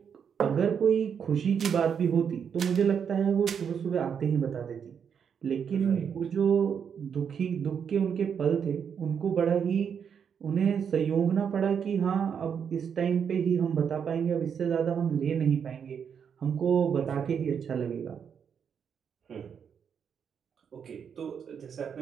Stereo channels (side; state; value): left; quieter; 7.3 dB